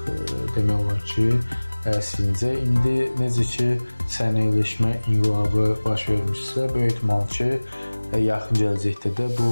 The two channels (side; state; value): both; inverted; correlation -1.00